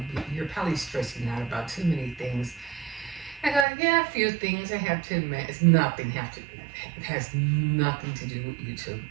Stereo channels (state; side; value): drops out; left; at 3.7 s